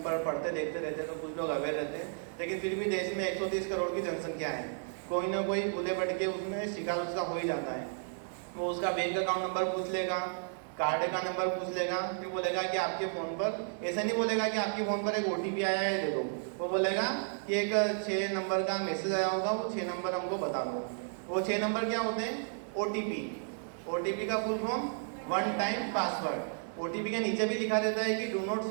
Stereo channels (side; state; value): left; silent; digital silence